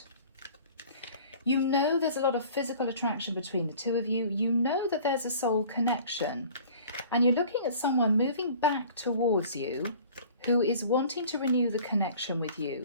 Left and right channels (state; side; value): inverted; both; correlation -0.47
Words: You know there's a lot of physical attraction between the two of you. You know that there's a soul connection. And you're looking at someone moving back towards you who is wanting to renew the connection with